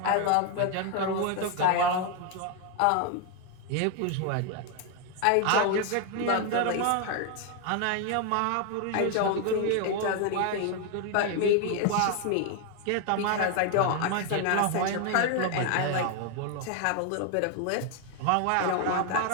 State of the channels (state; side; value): different; both; correlation 0.01